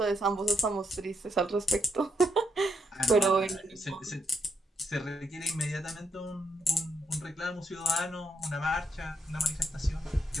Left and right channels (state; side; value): normal; both; correlation 0.78